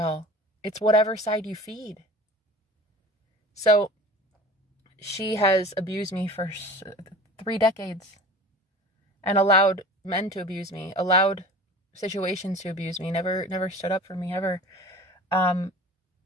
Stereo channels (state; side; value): normal; both; correlation 0.39